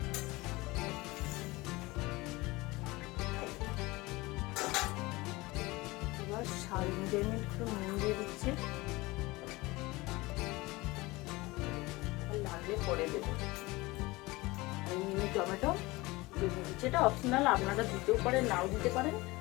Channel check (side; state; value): right; quieter; 21.6 dB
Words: স্বাদ অনুযায়ী একটু নুন দিয়ে দিচ্ছি, লাগলে পরে দেবো। মিনি টমেটো দিয়ে দিচ্ছি, এটা অপশনাল, আপনারা দিতেও পারেন নাও দিতে পারেন,